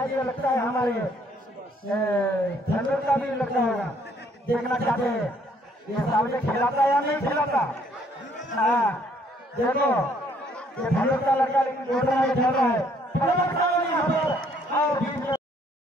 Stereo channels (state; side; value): normal; both; correlation 0.65